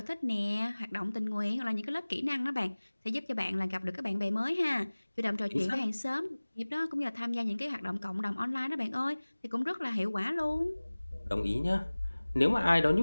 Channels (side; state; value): both; inverted; correlation -1.00